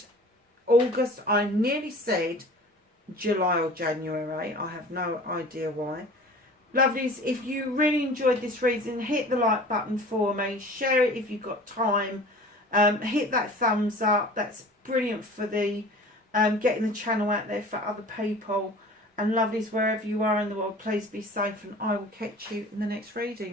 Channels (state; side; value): normal; both; correlation 0.43